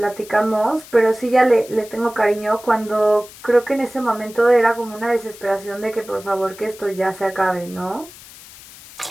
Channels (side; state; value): left; noise; hiss, 19 dB below the sound